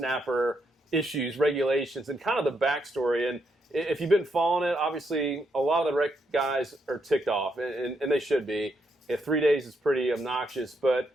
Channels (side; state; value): both; normal; correlation 0.79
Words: issues, regulations, and kind of the backstory. And if you've been following it, obviously a lot of the rec guys are ticked off, and they should be. If 3 days is pretty obnoxious, but